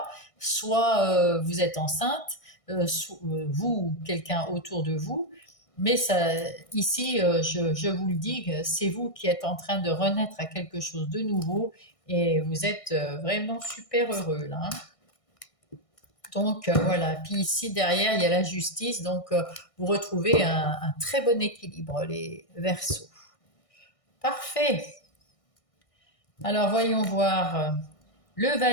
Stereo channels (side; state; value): right; late; 1.6 ms